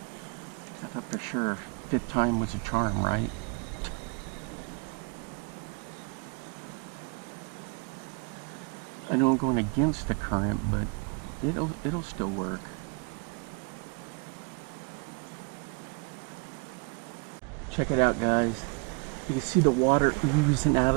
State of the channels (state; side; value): quieter; left; 34.6 dB